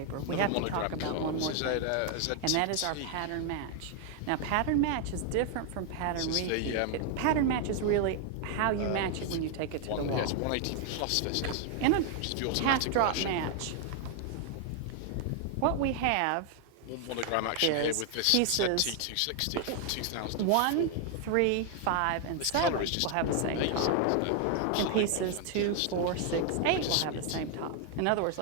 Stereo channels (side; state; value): both; different; correlation 0.00